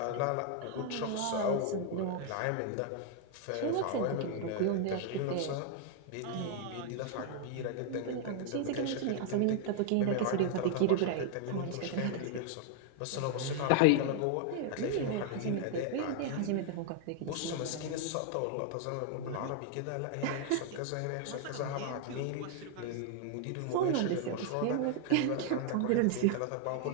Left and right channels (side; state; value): both; different; correlation 0.00